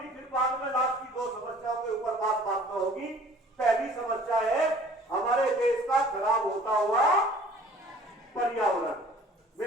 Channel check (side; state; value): both; normal; correlation 0.51